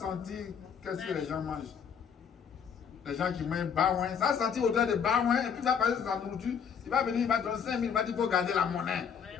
qu'est-ce que les gens mangent? Les gens qui mangent baouin, ça va sentir l'odeur de baouin, et puis ça va passer sur sa nourriture, il va venir, il va te donner 5 000, il va dire qu'il faut garder la monnaie.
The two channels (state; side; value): quieter; right; 7.2 dB